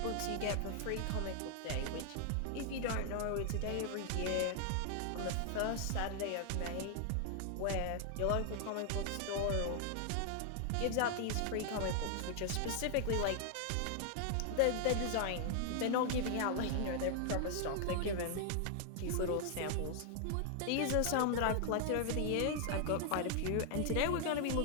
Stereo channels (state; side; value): different; both; correlation 0.00